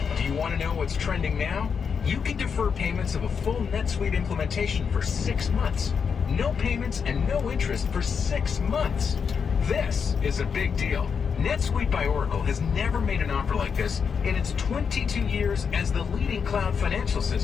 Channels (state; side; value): quieter; right; 6.3 dB